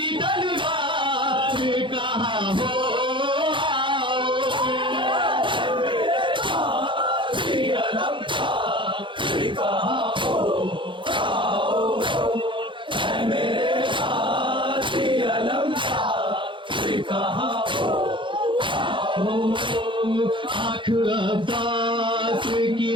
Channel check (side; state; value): left; late; 0.24 ms